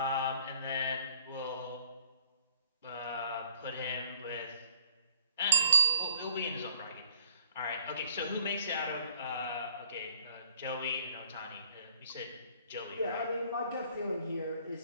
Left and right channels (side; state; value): both; inverted; correlation -0.61